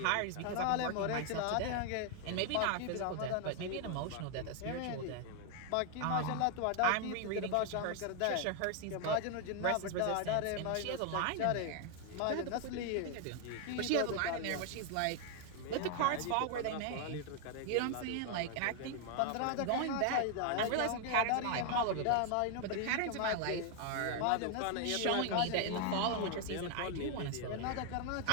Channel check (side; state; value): both; different; correlation 0.00